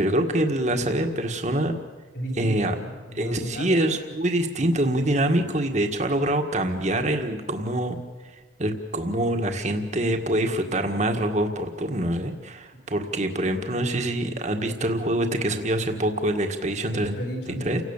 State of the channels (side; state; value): both; normal; correlation 0.53